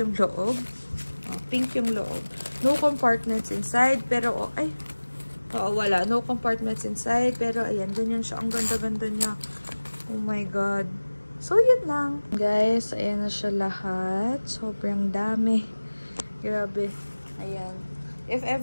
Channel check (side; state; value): both; inverted; correlation -1.00